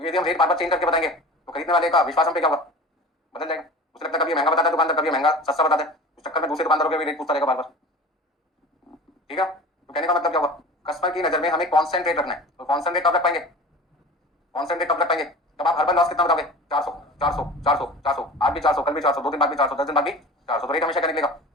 यदि हम रेट बार बार चेंज करके बताएंगे तो खरीदने वाले का विश्वास हम पे क्या होगा? बदल जाएगा। उसे लगता है कभी महंगा बताता है दुकानदार, कभी महंगा सस्ता बताता है, उस चक्कर में दूसरे दुकानदारों के भी रेट पूछता रहेगा बार बार। ठीक है? तो कहने का मतलब क्या हुआ, कस्टमर की नजर में हमें कांस्टेंट रेट रखना है। तो कांस्टेंट रेट कब रख पाएंगे? कांस्टेंट रेट कब रख पाएंगे? जब आप हर बार लॉस कितना बताओगे? 400 400 400 400, आज भी 400, कल भी 400, 2 दिन बाद भी 400, 10 दिन बाद भी 400, तो रेट हमेशा क्या निकलेगा?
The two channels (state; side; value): normal; both; correlation 0.37